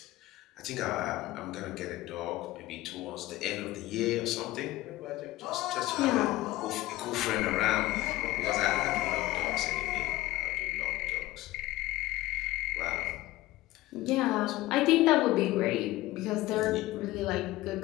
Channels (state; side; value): quieter; right; 17.4 dB